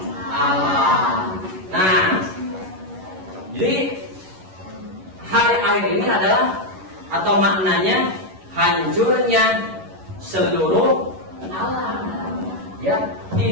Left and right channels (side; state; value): left; late; 11 ms